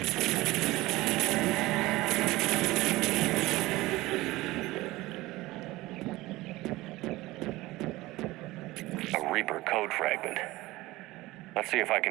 A Reaper code fragment. Let's see if I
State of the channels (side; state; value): left; quieter; 19.2 dB